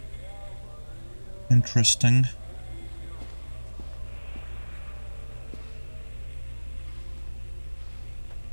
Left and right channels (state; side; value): inverted; both; correlation -1.00